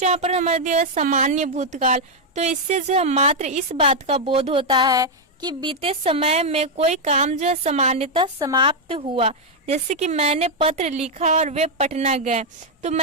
यहाँ पर हमारे दिया है सामान्य भूतकाल। तो इससे जो है मात्र इस बात का बोध होता है कि बीते समय में कोई काम जो है सामान्यतः समाप्त हुआ। जैसे कि मैंने पत्र लिखा और वे पटना गए। तो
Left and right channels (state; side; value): normal; both; correlation -0.01